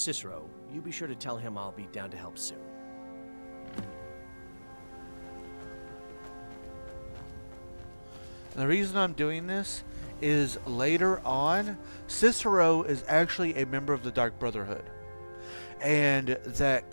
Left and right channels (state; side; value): inverted; both; correlation -1.00